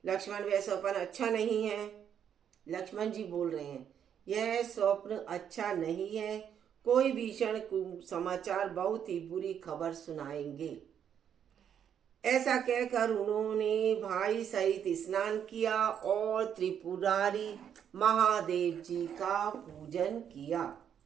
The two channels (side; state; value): left; quieter; 8.7 dB